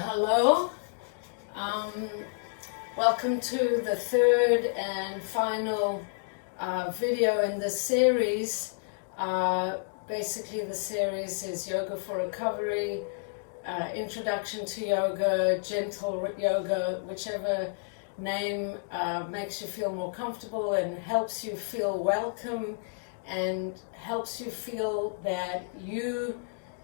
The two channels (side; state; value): right; silent; digital silence